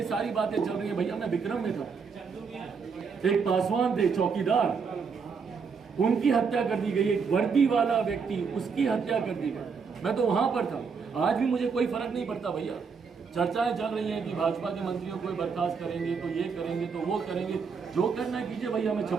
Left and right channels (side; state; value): left; quieter; 5.6 dB